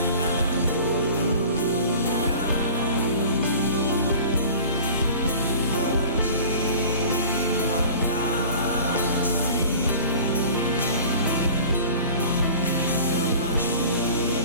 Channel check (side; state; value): both; inverted; correlation -0.42